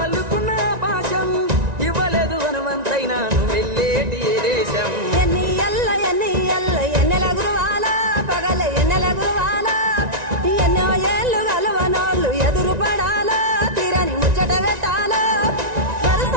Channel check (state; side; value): late; left; 1.9 ms